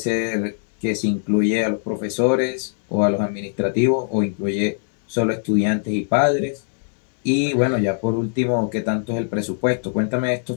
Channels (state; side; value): silent; right; digital silence